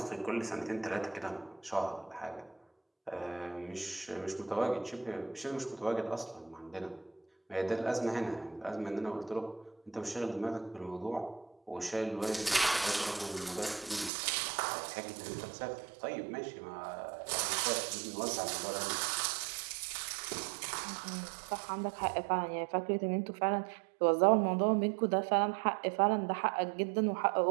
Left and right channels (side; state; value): left; drops out; at 14.1 s